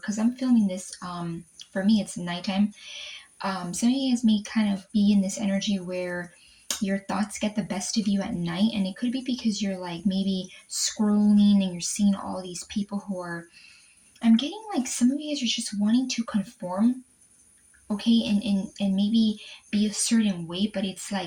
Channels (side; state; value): both; identical; correlation 1.00